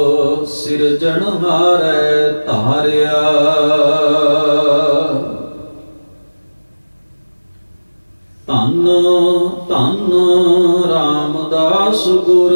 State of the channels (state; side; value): inverted; both; correlation -1.00